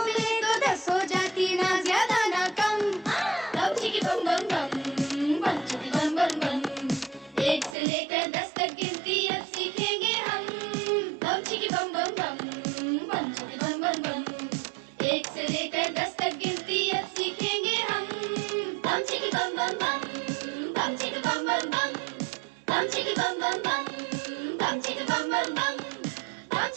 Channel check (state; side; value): drops out; left; at 7.8 s